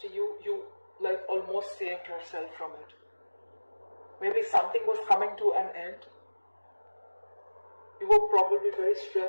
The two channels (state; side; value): inverted; both; correlation -1.00